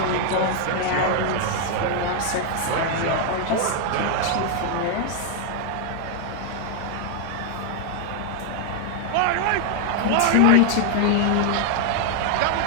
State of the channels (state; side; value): different; both; correlation 0.00